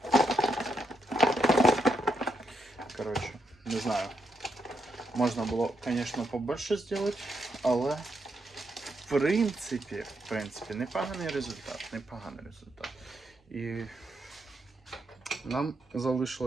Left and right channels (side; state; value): both; normal; correlation 0.80